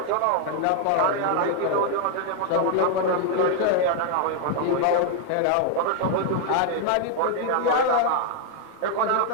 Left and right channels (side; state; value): both; different; correlation 0.00